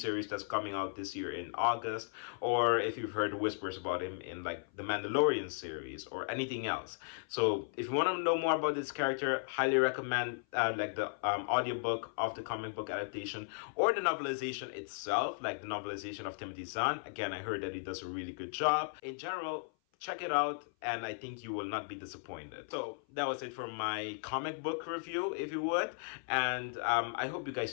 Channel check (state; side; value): silent; right; 54 dB below the other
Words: that's coming out this year in August, or if you've heard whispers about him in like the Mandalorian series or anything else. So if you want to know more about this character, highly recommend like the audiobook of the comic book adaptation or the novelization itself, like the novelization of Timothy Zahn. Again, I heard that he does a really good job. In general, check it out, and I think you will not be disappointed. So that was it for my comic book review, if you would, and I hope you